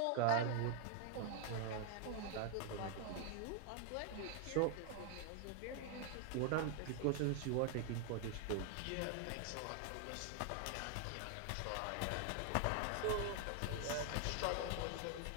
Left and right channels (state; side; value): different; both; correlation 0.00